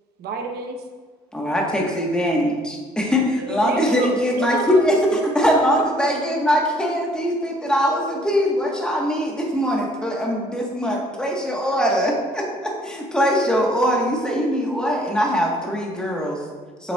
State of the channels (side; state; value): both; normal; correlation 0.61